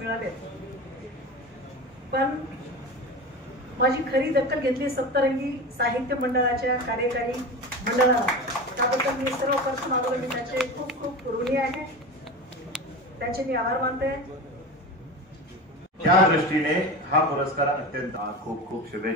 पण माझी खरी दखल घेतली सप्तरंगी साहित्य मंडळाच्या कार्यकारी मंडळाला। त्याबद्दल मी सर्वप्रथम मी त्याचे खूप खूप ऋणी आहे, त्याचे मी आभार मानते। त्या दृष्टीने हा पुरस्कार अत्यंत खूप खूप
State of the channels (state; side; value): normal; both; correlation 0.28